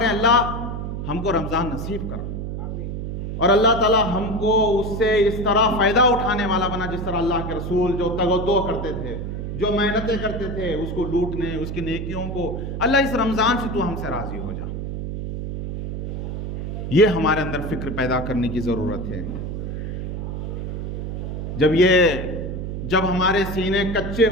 अल्लाह हमको रमज़ान नसीब कर, और अल्लाह ताला हमको उससे इस तरह फ़ायदा उठाने वाला बना जिस तरह अल्लाह के रसूल जो तगद्दो करते थे, जो मेहनतें करते थे, उसको लूटने, उसकी नेकियों को। अल्लाह इस रमज़ान से तू हमसे राज़ी हो जा, ये हमारे अंदर फ़िक्र पैदा करने की ज़रूरत है। जब हमारे सीने कच्चे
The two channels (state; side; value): noise; right; hum, 5 dB below the sound